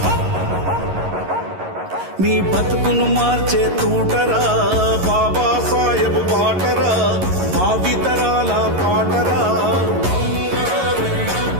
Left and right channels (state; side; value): late; left; 11 ms